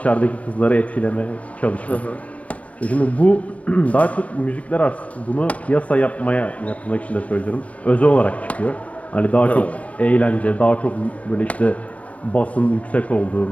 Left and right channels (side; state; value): right; late; 0.067 ms